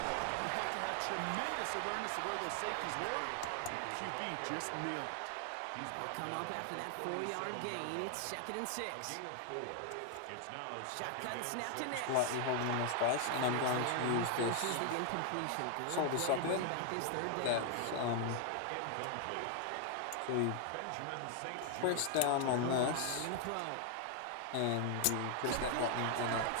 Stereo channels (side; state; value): both; different; correlation 0.00